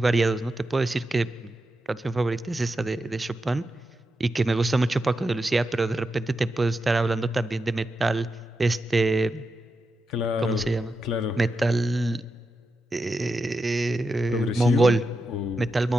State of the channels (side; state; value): both; normal; correlation 0.88